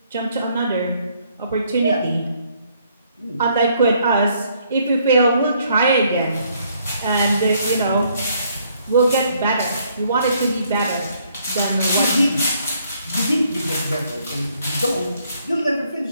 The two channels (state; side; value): inverted; both; correlation -0.68